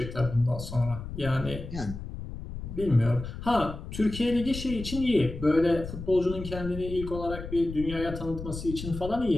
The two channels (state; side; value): noise; left; rumble, 9 dB below the sound